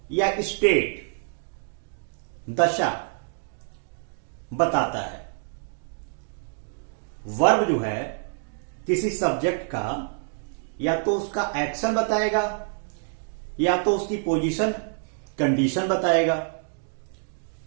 या स्टेट, दशा बताता है। वर्ब जो है किसी सब्जेक्ट का या तो उसका एक्शन बताएगा या तो उसकी पोजीशन, कंडीशन बताएगा।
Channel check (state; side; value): silent; left; 60 dB below the other